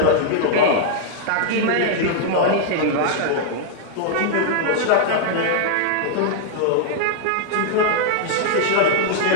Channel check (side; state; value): both; different; correlation -0.01